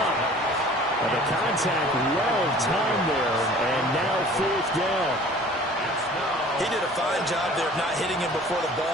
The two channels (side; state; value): both; normal; correlation 0.48